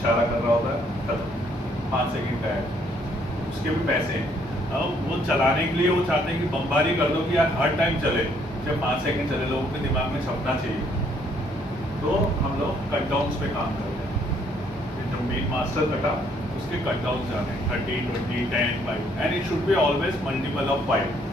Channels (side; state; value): both; normal; correlation 0.67